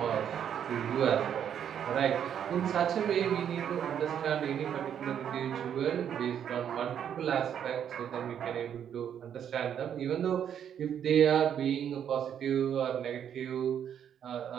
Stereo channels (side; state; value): left; quieter; 9.0 dB